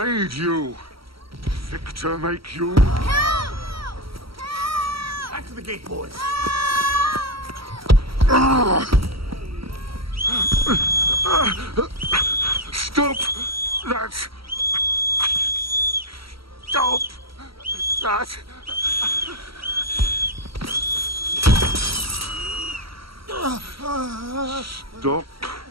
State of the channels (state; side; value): late; left; 0.75 ms